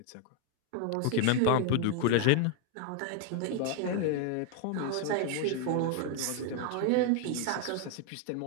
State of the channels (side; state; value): both; different; correlation 0.00